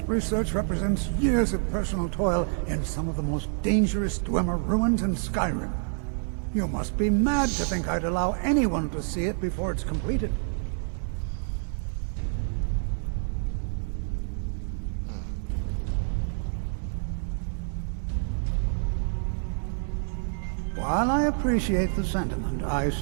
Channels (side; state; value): left; silent; 60 dB below the other